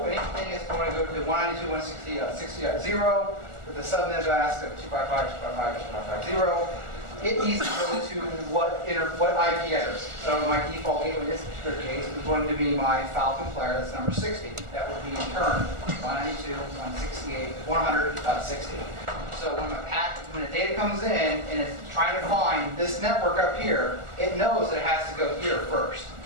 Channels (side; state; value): left; late; 1.4 ms